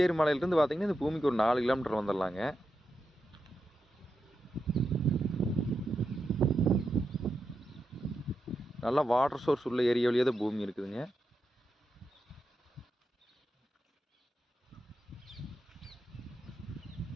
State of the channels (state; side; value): normal; both; correlation 0.87